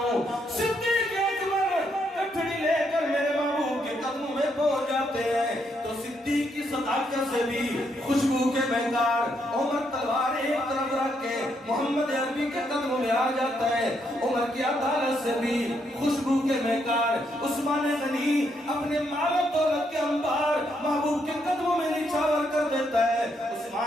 صدیق اکبر کٹھڑی لے کر میرے محبوب کے قدموں میں پہنچ جاتے ہیں تو صدیق کی صداقت سے بھی خوشبو کے مہکار، عمر تلوار ایک طرف رکھ کے محمد عربی کے قدموں میں آ جاتا ہے، عمر کی عدالت سے بھی خوشبو کے مہکار، عثمان غنی اپنے مال و دولت کے انبار محبوب کے قدموں میں نچھاور کر دیتا ہے،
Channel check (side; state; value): both; normal; correlation 0.76